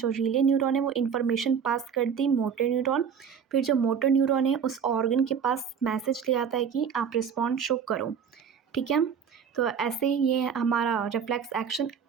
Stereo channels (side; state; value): left; quieter; 7.2 dB